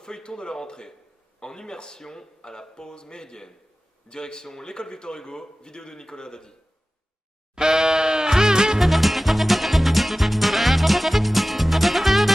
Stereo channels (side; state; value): both; normal; correlation 0.96